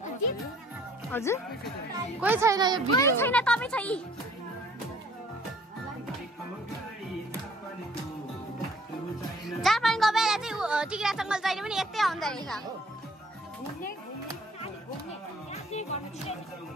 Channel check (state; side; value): normal; both; correlation 0.57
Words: हजुर कोही छैन यो भिडियो छैन तपाईँ छै जापानको बेला चाहिँ टिग्रा जङ्गल जहिले पनि यतै आउँदो रहेछ